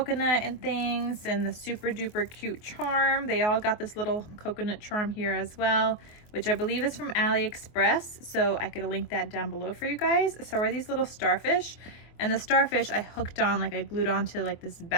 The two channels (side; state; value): right; late; 24 ms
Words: and things and the super duper cute charm. They all got this little coconut charm here as well, which I believe is from AliExpress. So I could link that down below for you guys. So are these little starfish, and the starfish I hooked on, like I glued onto like this